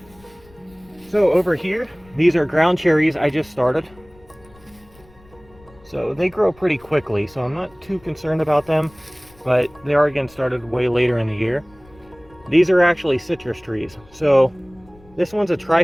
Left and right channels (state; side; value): noise; left; rumble, 27 dB below the sound